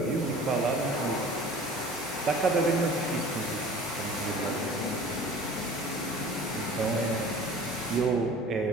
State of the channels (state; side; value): normal; both; correlation 0.44